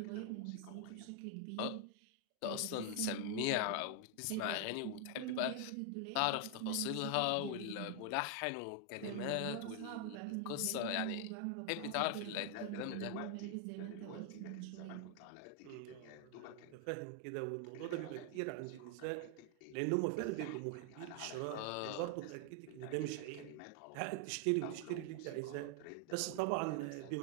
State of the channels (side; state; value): both; different; correlation 0.00